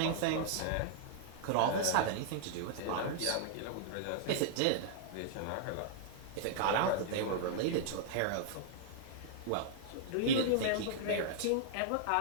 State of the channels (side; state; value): both; different; correlation -0.01